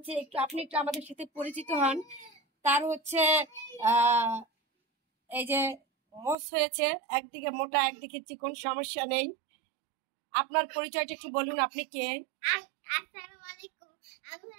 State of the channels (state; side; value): drops out; left; at 6.4 s